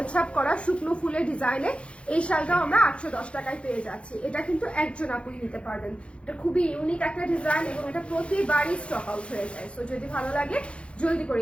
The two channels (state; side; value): late; right; 0.059 ms